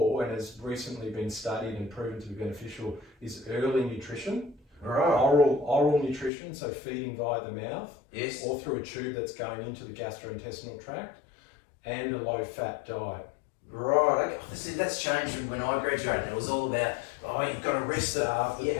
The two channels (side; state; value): right; drops out; at 6.3 s